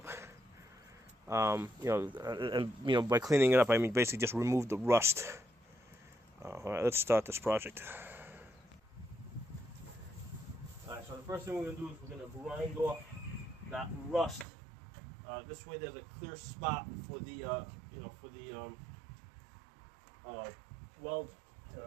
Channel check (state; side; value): drops out; left; at 14.5 s